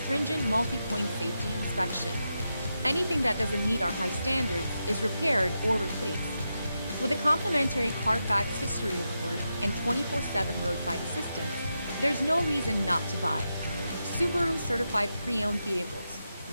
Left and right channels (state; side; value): inverted; both; correlation -0.87